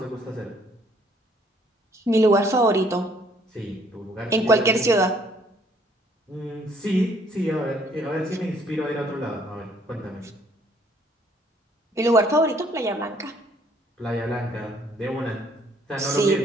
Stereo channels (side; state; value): both; normal; correlation 0.64